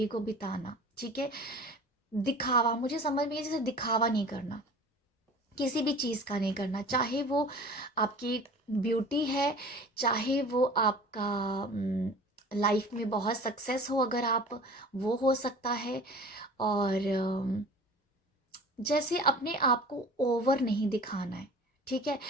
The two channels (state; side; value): normal; both; correlation 0.42